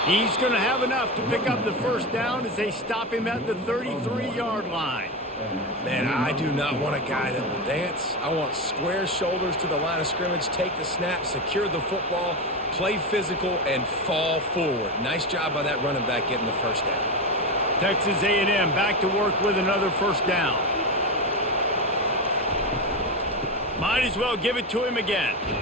He's going to have enough to pick up the first down as they stop him at the 33-yard line. Man, I do not want a guy that will dance. I want square shoulders to the line of scrimmage, take the snap, secure the football, play physical, and fall forward. Nice job by that running back getting the first down. Texas A&M back to work with another first down. Might as well give it to him again.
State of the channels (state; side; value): normal; both; correlation 0.17